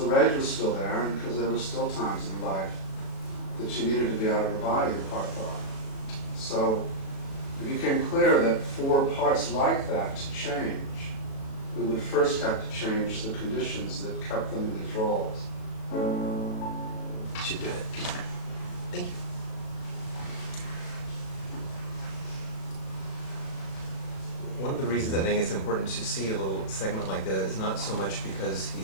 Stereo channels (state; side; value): late; right; 37 ms